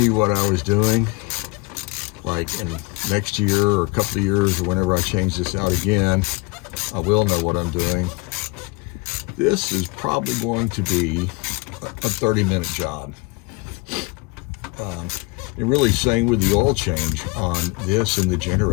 what I was doing, like in next year or a couple of years or whenever I change this out again, I will know what I'm doing. This is probably going to be a 30-minute job. And really, same with the oil change on this and the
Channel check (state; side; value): quieter; right; 27.0 dB